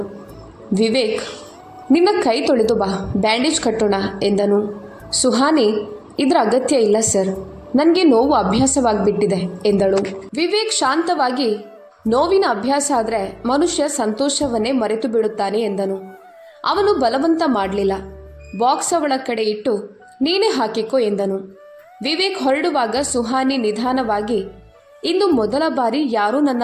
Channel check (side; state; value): both; identical; correlation 1.00